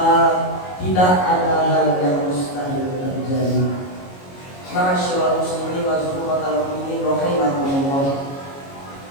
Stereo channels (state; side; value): late; right; 22 ms